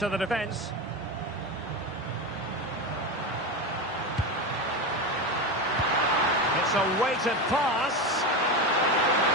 the defence. It's a weighted pass.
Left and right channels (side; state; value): both; normal; correlation 0.19